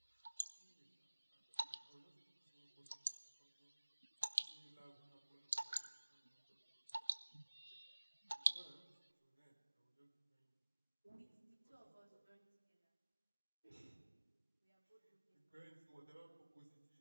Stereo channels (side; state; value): both; inverted; correlation -1.00